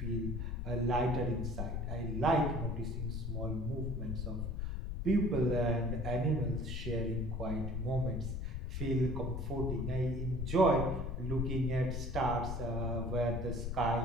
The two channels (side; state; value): left; noise; rumble, 3 dB below the sound